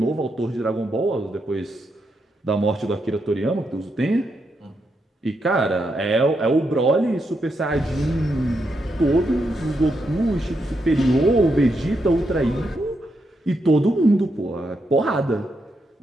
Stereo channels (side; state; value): both; normal; correlation 0.82